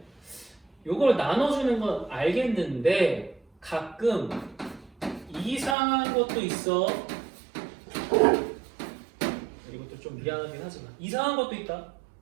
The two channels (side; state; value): left; drops out; at 5.8 s